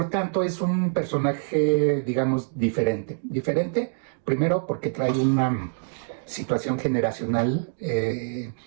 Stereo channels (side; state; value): left; silent; digital silence